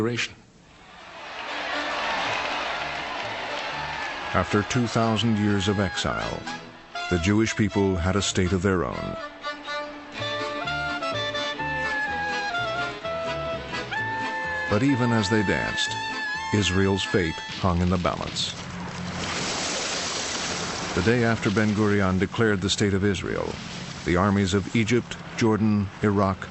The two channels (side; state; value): both; identical; correlation 1.00